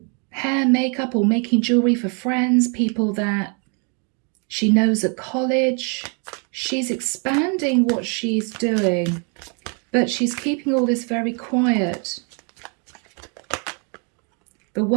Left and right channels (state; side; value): quieter; left; 37.1 dB